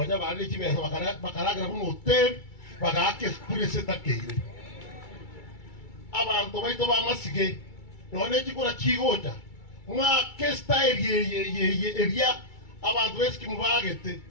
bali chibesa bakaragira mu hotel bagake kurese takeire abantu baito bamasige none chikura chigoja mwa style ye eria abantu eski mubagete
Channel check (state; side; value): late; right; 2.3 ms